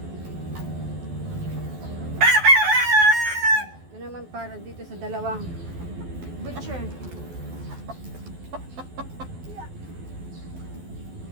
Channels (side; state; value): left; late; 12 ms